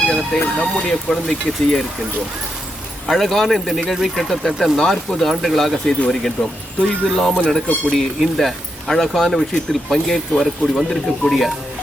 நம்முடைய குழந்தைக்கு செய்ய இருக்கின்றோம். அழகான இந்த நிகழ்வை கிட்டத்தட்ட 40 ஆண்டுகளாக செய்து வருகின்றோம். தொய்வில்லாமல் நடக்கக்கூடிய இந்த அழகான விஷயத்தில் பங்கேற்று வந்திருக்கக்கூடிய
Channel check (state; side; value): normal; both; correlation 0.83